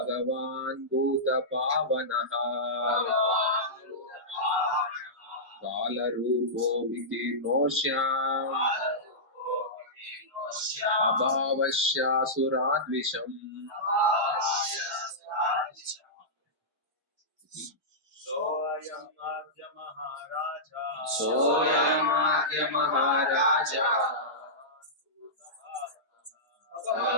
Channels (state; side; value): normal; both; correlation -0.14